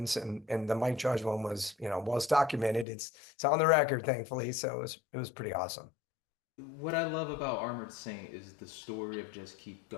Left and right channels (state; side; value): drops out; right; at 2.9 s